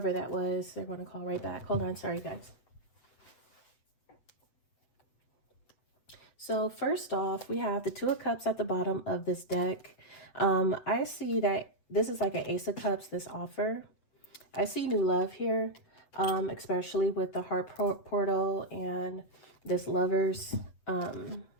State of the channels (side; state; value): right; late; 8.0 ms